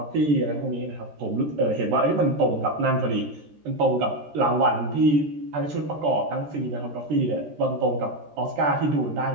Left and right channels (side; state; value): left; late; 13 ms